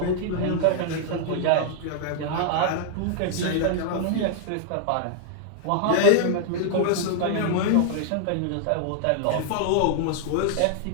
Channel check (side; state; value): both; different; correlation -0.01